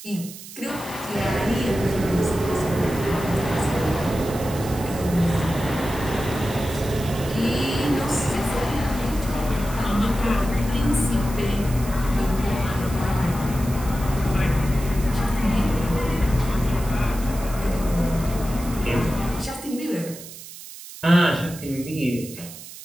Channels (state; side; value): noise; right; hiss, 14 dB below the sound